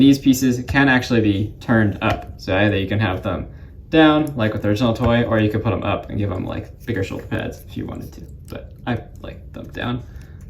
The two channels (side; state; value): both; identical; correlation 1.00